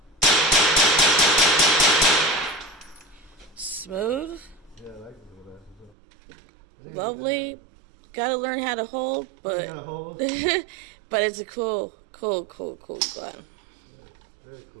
Smooth. Yeah, I like the little bastards. Lovely. Gotta learn how to hold, but Gotta hold. but it's a cool gun. Yeah, very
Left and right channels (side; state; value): left; drops out; at 6.0 s